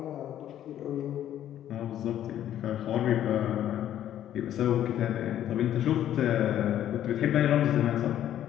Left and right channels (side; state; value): right; quieter; 11.4 dB